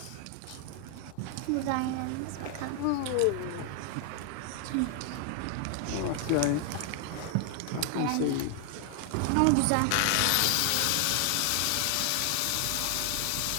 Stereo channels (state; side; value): different; both; correlation 0.00